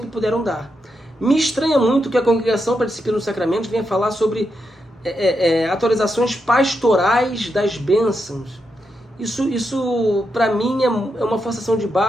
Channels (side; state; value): both; normal; correlation 0.84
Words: puderam dar. Me estranha muito que a Congregação para a Disciplina dos Sacramentos venha falar sobre atualizações pastorais das bênçãos. Isso para mim é uma forçação de